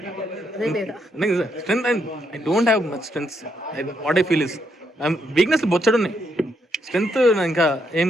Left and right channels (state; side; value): normal; both; correlation 0.77